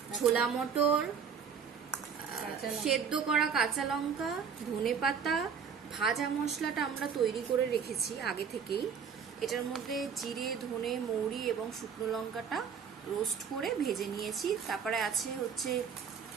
ছোলা মটর, সেদ্ধ করা কাঁচা লঙ্কা, ধনেপাতা, ভাজা মশলাটা আমরা তৈরি করে রেখেছি আগে থেকেই। এটার মধ্যে জিরে, ধনে, মৌরি এবং শুকনো লঙ্কাটা রোস্ট করে ভেজে নিয়েছি। তারপরে আছে হচ্ছে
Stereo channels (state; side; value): quieter; left; 6.8 dB